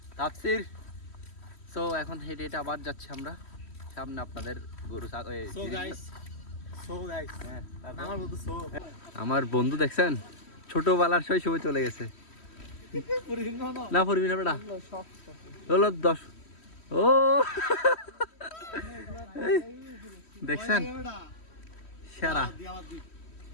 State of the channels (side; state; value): right; late; 3.1 ms